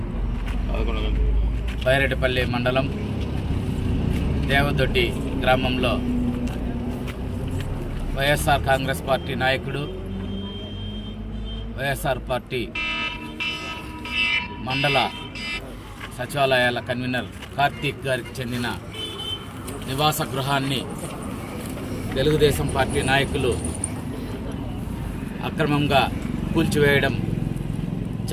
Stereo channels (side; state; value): both; identical; correlation 1.00